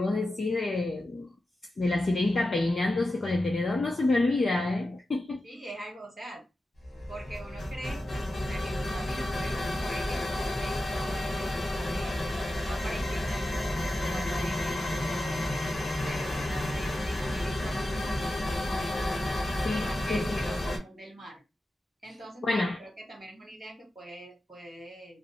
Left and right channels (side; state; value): both; normal; correlation 0.92